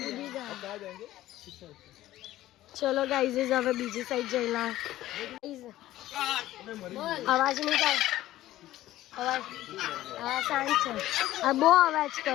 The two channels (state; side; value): quieter; right; 14.9 dB